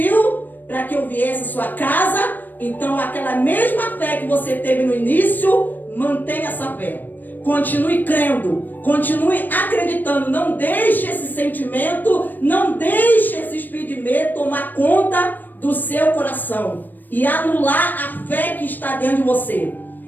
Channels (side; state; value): right; late; 0.089 ms